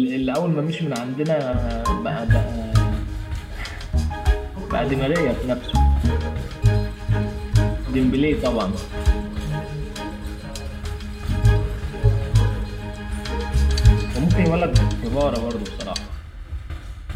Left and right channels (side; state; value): both; identical; correlation 1.00